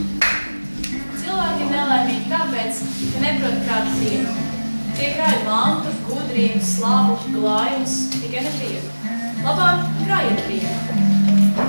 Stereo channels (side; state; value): both; inverted; correlation -1.00